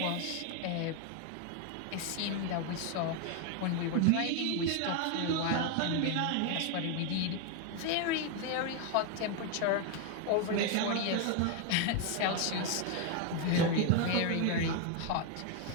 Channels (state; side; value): different; both; correlation 0.01